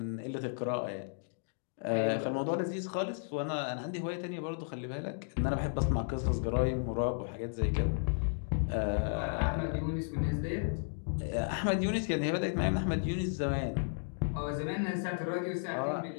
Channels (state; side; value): silent; right; digital silence